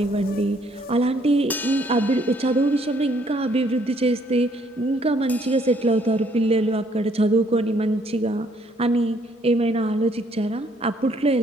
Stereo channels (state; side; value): normal; both; correlation 0.66